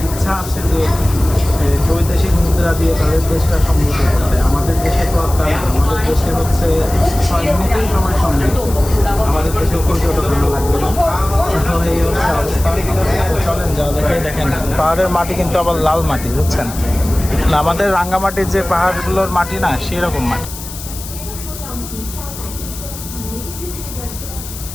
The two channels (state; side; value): noise; left; hiss, 12 dB below the sound